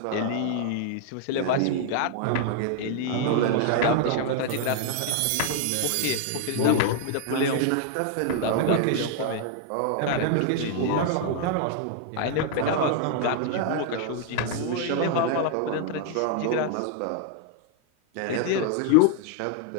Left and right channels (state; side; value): different; both; correlation 0.00